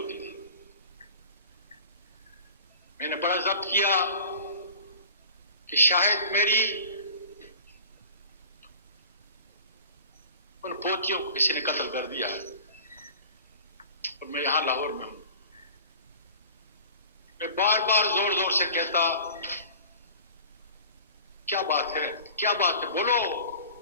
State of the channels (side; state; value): both; inverted; correlation -0.43